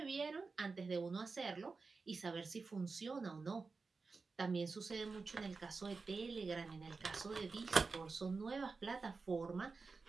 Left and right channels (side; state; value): left; quieter; 4.3 dB